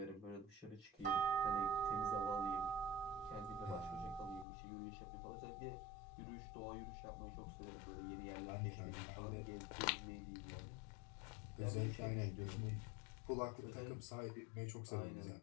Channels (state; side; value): drops out; right; at 4.5 s